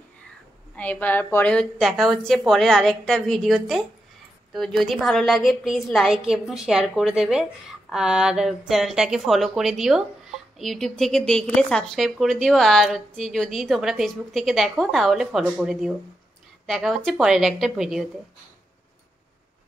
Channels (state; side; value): normal; both; correlation 0.86